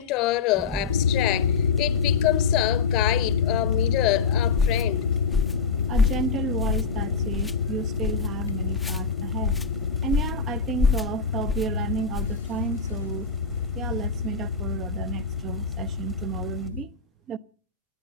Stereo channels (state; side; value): quieter; right; 4.9 dB